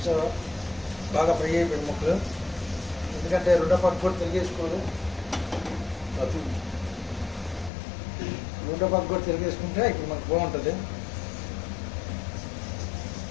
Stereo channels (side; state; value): right; drops out; at 7.7 s